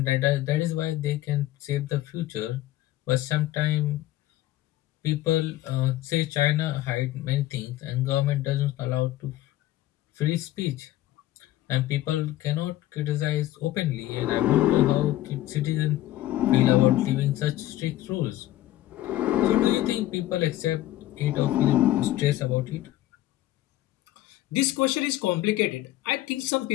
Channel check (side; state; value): right; quieter; 15.0 dB